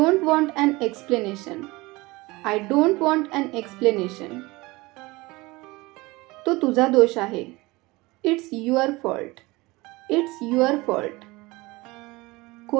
want an explanation. I don't want an explanation. तो तुझा दोष आहे. It's your fault. It's your fault.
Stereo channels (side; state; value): left; quieter; 22.3 dB